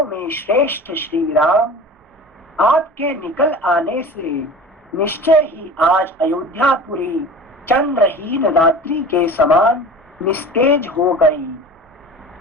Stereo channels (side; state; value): both; normal; correlation 0.37